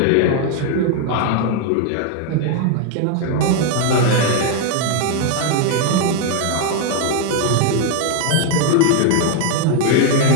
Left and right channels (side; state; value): both; different; correlation 0.00